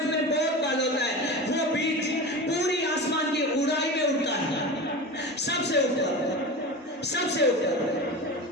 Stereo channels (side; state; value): both; normal; correlation 0.29